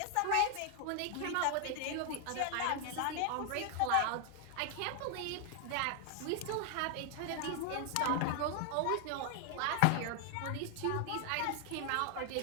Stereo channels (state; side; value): different; both; correlation 0.00